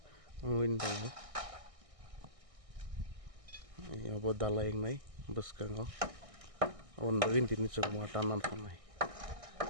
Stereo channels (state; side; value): late; left; 1.6 ms